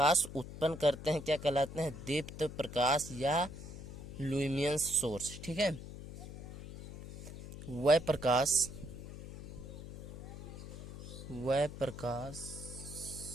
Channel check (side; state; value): left; noise; hum, 12 dB below the sound